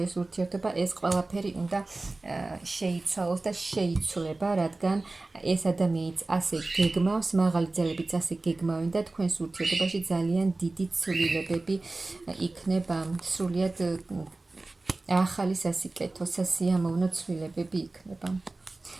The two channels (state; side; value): quieter; left; 3.2 dB